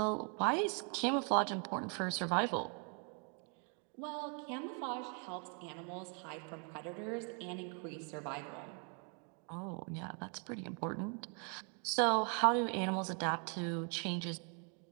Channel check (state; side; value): quieter; left; 39.2 dB